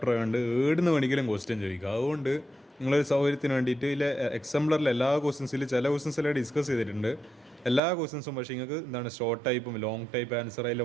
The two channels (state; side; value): drops out; left; at 7.8 s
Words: ആയതുകൊണ്ട് ഏടുന്ന് വേണമെങ്കിലും ക്വസ്റ്റ്യൻ ചോദിക്കുക. അതുകൊണ്ട് നിങ്ങളൊരു സൗകര്യത്തിന് വേണ്ടിയിട്ട് ഇതിൽ എക്സാംപ്ലറിൽ എല്ലാ ക്വസ്റ്റ്യൻസിൽ ചില ക്വസ്റ്റ്യൻസിലെ ഡിസ്കസ് ചെയ്തിട്ടുണ്ട്. എല്ലാ ക്വസ്റ്റ്യൻസും പക്ഷേ നിങ്ങൾക്ക് എന്താണ് ഷോർട്ട് ടൈപ്പും ലോങ് ടൈപ്പ് ആൻസർ അതിൽ